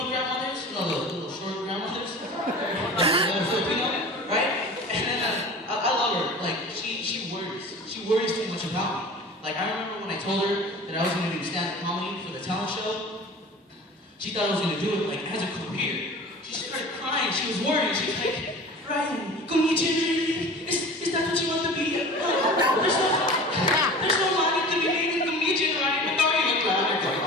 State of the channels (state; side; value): normal; both; correlation 0.39